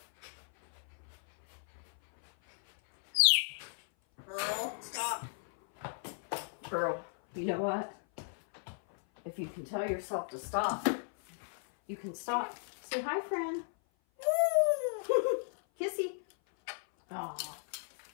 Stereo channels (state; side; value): silent; right; 54 dB below the other